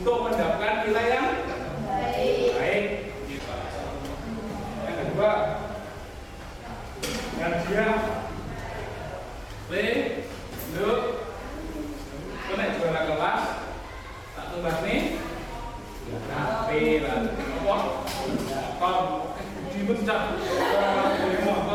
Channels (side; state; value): both; identical; correlation 1.00